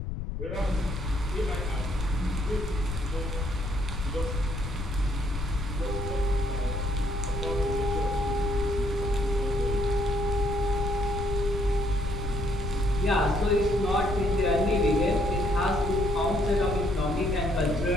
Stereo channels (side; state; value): left; noise; rumble, 5 dB below the sound